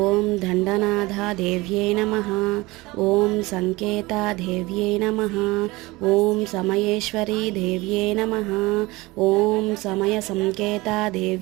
దండనాథా దేవ్యే నమః. ఓం సంకేతా దేవ్యే నమః. ఓం సమయేశ్వరీ దేవ్యే నమః. ఓం సమయ సంకేతా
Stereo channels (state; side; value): quieter; left; 21.6 dB